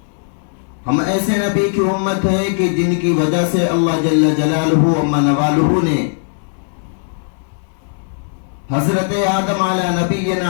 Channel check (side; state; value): right; silent; digital silence